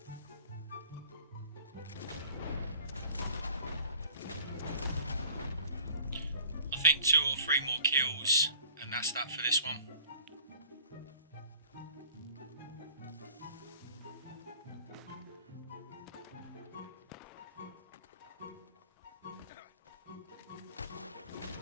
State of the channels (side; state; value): both; inverted; correlation -0.49